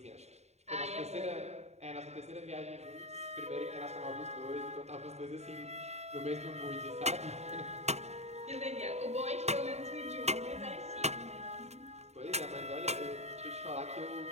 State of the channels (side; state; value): left; late; 0.32 ms